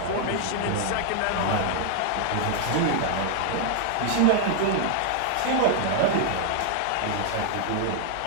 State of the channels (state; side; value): different; both; correlation 0.00